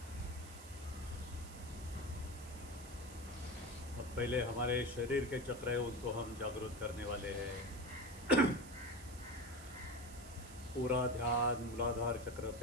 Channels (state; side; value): noise; right; hiss, 16 dB below the sound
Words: अब पहले हमारे शरीर के चक्र है उनको हम जागरूक करने वाले हैं। पूरा ध्यान मूलाधार चक्र